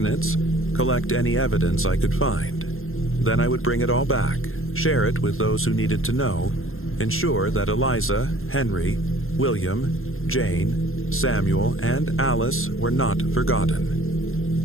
collect any evidence I could find. Then I would bring it all back, share it with those who needed to know, ensure that Eliza, Henry, William, Jane, Samuel, and Alice were not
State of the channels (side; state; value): right; late; 0.61 ms